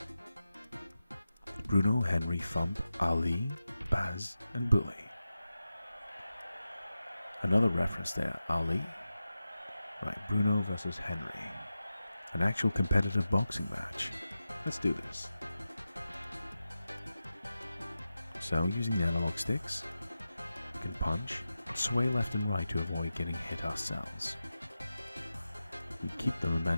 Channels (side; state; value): both; inverted; correlation -0.93